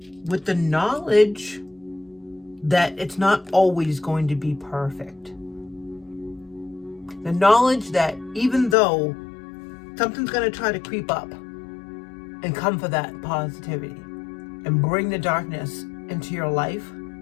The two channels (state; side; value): drops out; right; at 8.8 s